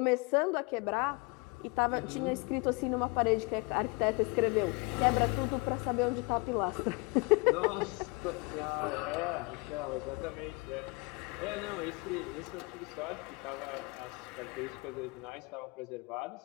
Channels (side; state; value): right; quieter; 28.1 dB